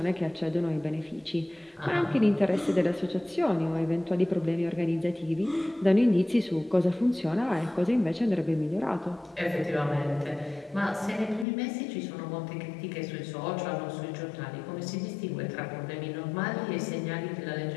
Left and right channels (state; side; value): drops out; right; at 11.5 s